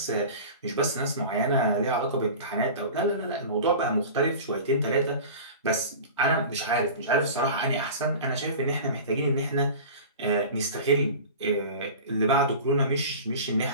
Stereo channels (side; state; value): both; inverted; correlation -0.35